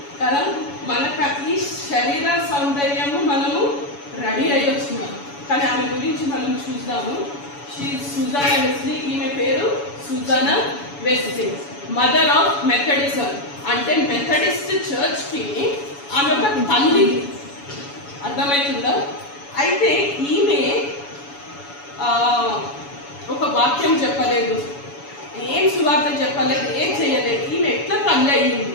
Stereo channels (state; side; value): late; right; 7.0 ms